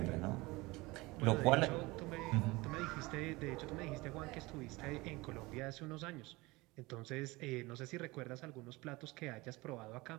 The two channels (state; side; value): quieter; left; 22.3 dB